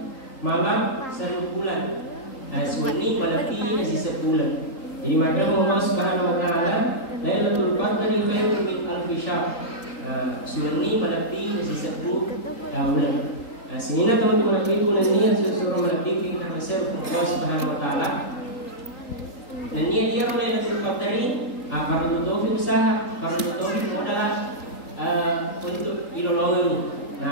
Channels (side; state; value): right; late; 3.8 ms